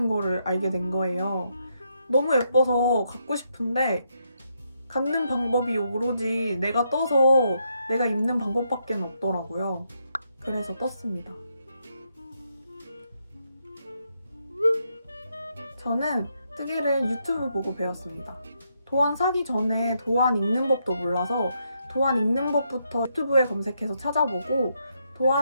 거를 알게 된 거예요. 너무 예뻐서 갖고 싶은데 갖는 방법이 오로지 내가 떠서 내가 입는 방법밖에 없더라고요. 그래서 떴습니다. 저는 뜨개를 유튜브 보고 배웠습니다. 도안 사기 전에 도안 읽는 법도 몰라서 도안 읽는 법부터 유튜브에 검색해서 찾아보고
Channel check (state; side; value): inverted; both; correlation -0.78